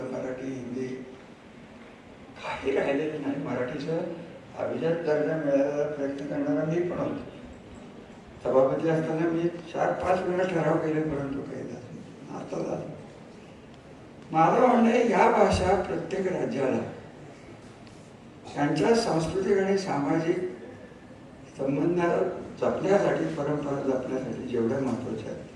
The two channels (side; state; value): both; identical; correlation 1.00